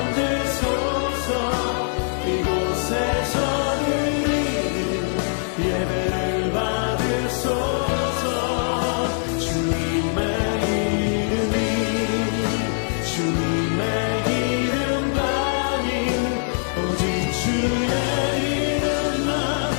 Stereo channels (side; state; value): right; silent; digital silence